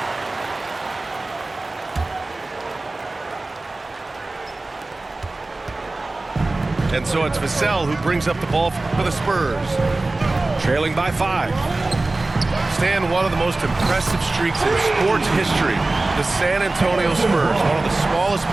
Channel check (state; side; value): quieter; left; 3.1 dB